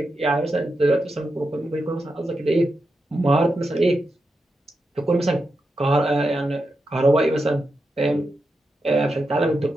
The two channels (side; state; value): both; normal; correlation 0.87